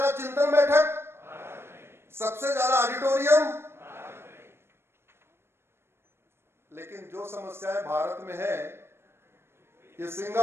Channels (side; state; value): left; late; 0.12 ms